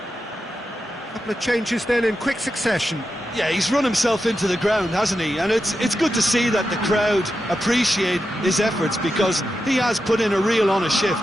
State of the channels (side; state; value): both; normal; correlation 0.89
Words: Couple of changes then in quick succession. Yeah, he's run himself into the ground, hasn't he? And it's good to see that the crowd appreciate his efforts, because he has put in a real honest